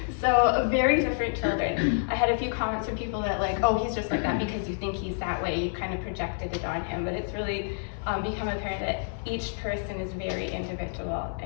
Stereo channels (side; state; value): right; silent; 59 dB below the other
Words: So very different children. I had a few comments from people that like, oh, he's just like that because you think he's that way. You kind of projected it on him, but it's really become apparent that each person is very individual,